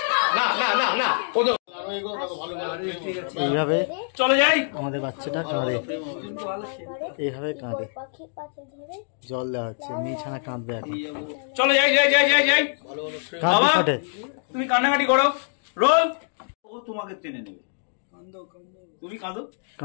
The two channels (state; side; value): silent; right; digital silence